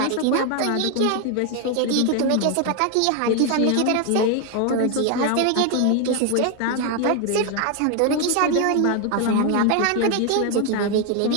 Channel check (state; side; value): different; both; correlation 0.01